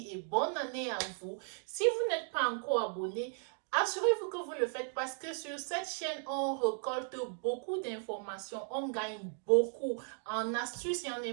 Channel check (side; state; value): left; silent; 54 dB below the other